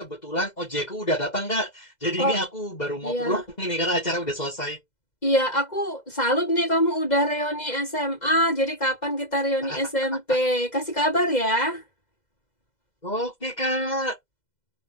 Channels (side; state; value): right; late; 2.0 ms